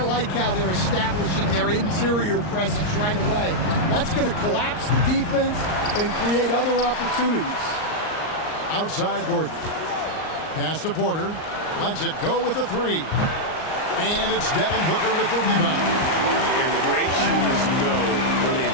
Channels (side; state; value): right; late; 38 ms